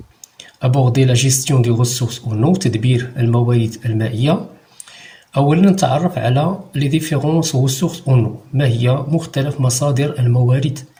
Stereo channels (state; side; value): identical; both; correlation 1.00